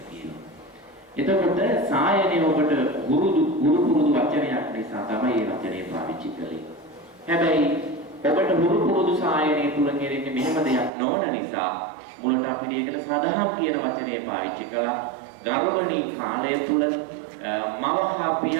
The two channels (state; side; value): drops out; left; at 10.9 s